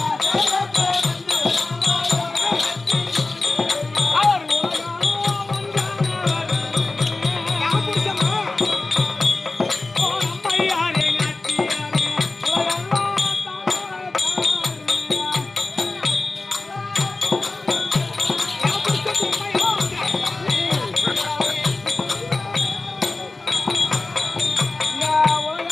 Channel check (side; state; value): right; quieter; 3.3 dB